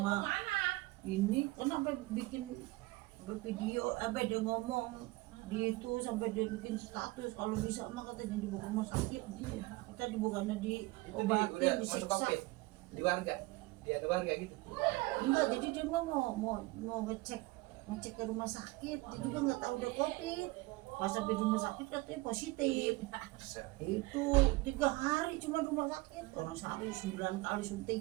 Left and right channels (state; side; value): quieter; left; 21.6 dB